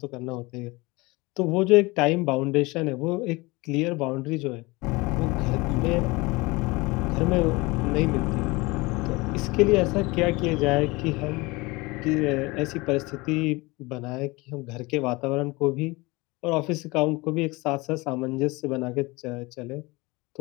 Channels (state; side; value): quieter; right; 23.7 dB